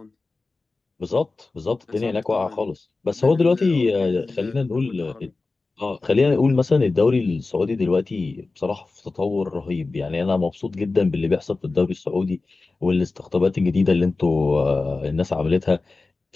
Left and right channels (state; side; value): quieter; right; 3.6 dB